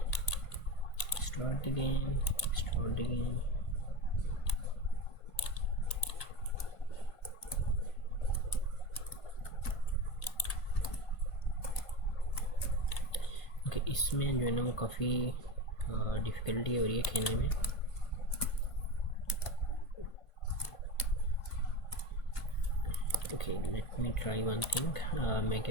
Start game, start game. Okay, इसमें जो है ना वो काफ़ी डिफ़िकल्टी हो रही है खेलने में। Okay, let me try one thing. मैं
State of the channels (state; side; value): late; right; 1.5 ms